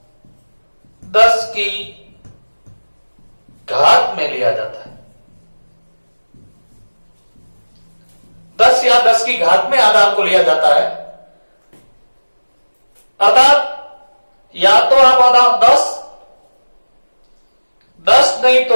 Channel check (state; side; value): inverted; both; correlation -1.00